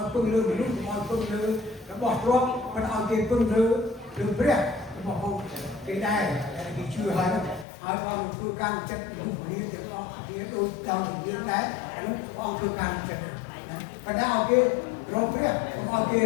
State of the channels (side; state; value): right; drops out; at 7.7 s